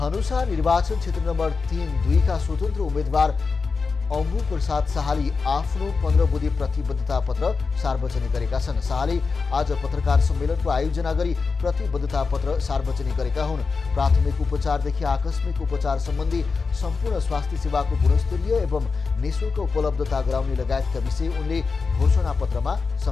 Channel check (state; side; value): quieter; right; 4.6 dB